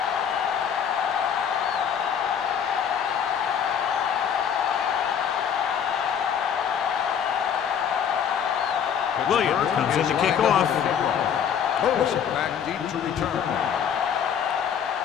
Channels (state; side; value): quieter; right; 8.1 dB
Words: Williams comes in to kick off. Toss it back deep to return.